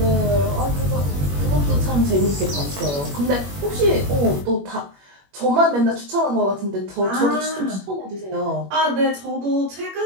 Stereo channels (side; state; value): left; late; 21 ms